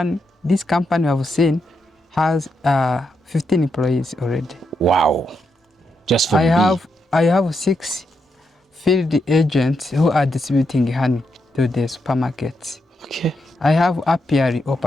This company I've seen has 15 employees already. Wow. Just for I bee. have 6 field agents who are distributing honey to the supermarkets. Okay. I have apiary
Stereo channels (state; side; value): normal; both; correlation 0.82